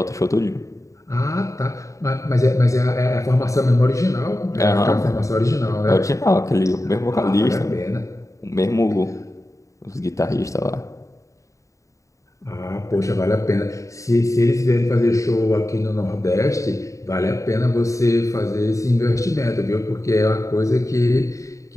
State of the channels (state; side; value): late; right; 0.16 ms